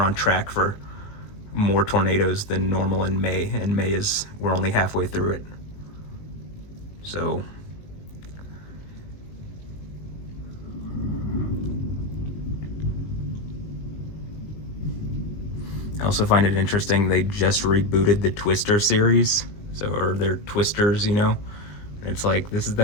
on track for more tornadoes than normal in May, and we're only halfway through it. So I also find it interesting they just rebooted the Twister series, or they're Twisters, you know? It's like, this is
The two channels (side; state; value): right; late; 19 ms